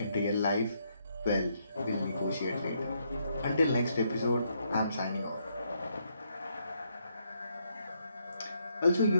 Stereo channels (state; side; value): inverted; both; correlation -0.75